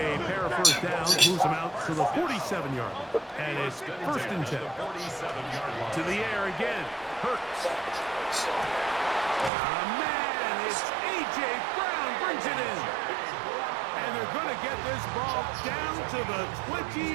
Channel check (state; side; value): drops out; left; at 9.5 s